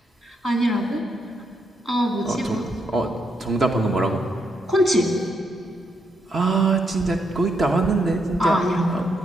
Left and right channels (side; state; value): both; normal; correlation 0.78